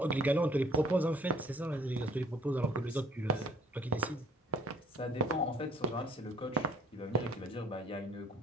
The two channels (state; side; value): normal; both; correlation 0.57